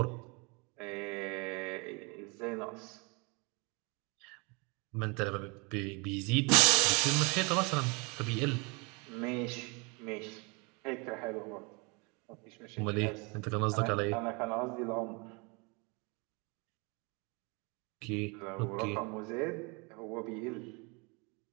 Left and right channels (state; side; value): quieter; left; 30.1 dB